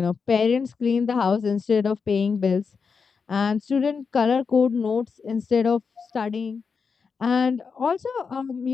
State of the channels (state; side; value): quieter; right; 5.5 dB